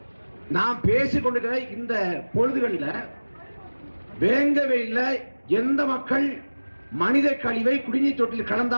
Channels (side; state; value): both; inverted; correlation -1.00